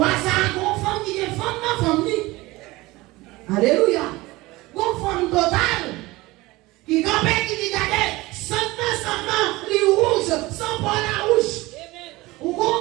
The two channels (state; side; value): quieter; left; 20.4 dB